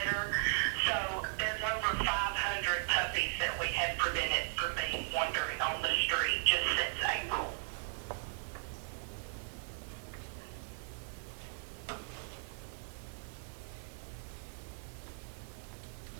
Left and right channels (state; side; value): silent; left; digital silence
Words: So there's over 500 puppies that we have prevented from being wandering on the street just since April.